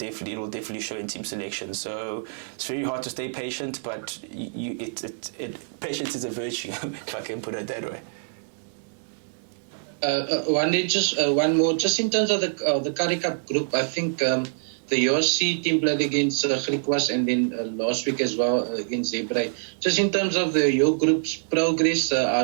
show in team selection. So it's very hard to stay patient, but patience is a virtue, if I can put it that way. One more, just in terms of the Currie Cup group, I think the USC team played against Griquas and then last week as well against Zebre. Just in terms of your group's progress,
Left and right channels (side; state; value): left; silent; digital silence